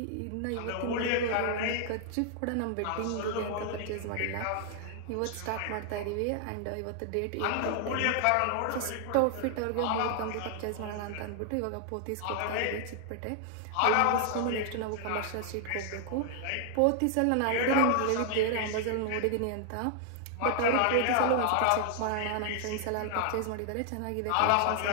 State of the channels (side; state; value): both; different; correlation 0.00